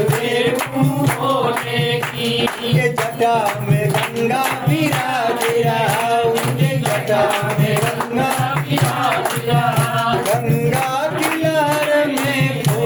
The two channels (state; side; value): identical; both; correlation 1.00